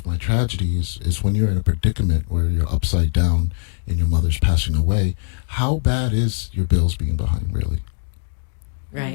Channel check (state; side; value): silent; right; digital silence